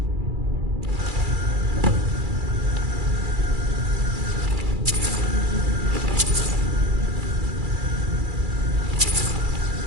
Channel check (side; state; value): left; late; 2.3 ms